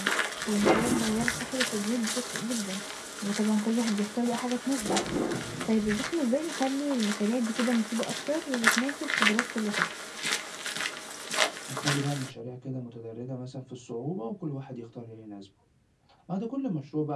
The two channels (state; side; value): identical; both; correlation 1.00